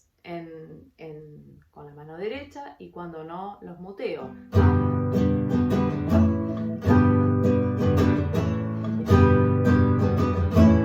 con la mano derecha y cuando no los muteo.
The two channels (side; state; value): both; identical; correlation 1.00